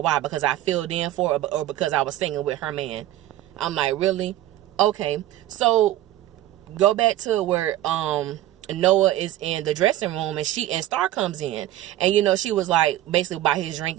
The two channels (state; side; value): quieter; left; 14.0 dB